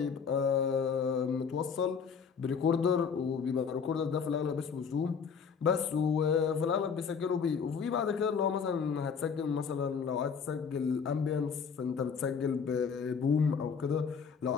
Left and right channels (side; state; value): right; quieter; 6.2 dB